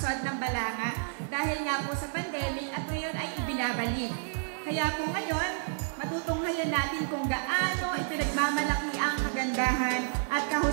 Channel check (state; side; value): silent; left; digital silence